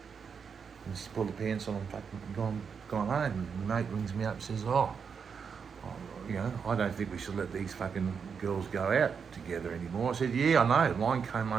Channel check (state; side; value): quieter; left; 6.3 dB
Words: And she's pulled the pants on and fucking gone home. And mate rings me up and says, you know, I don't think we should let these fucking girls go out together anymore. I said, yeah, I know. Mine came